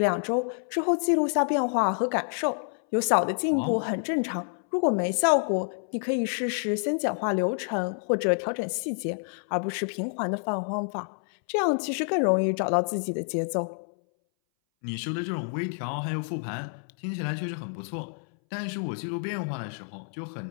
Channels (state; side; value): silent; right; 59 dB below the other